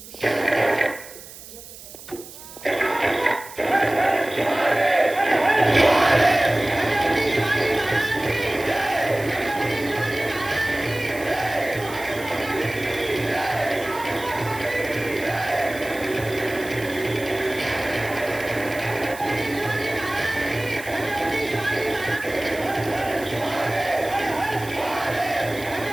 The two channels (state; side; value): noise; right; hiss, 16 dB below the sound